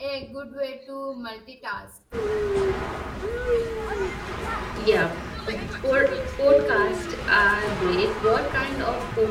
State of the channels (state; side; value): identical; both; correlation 1.00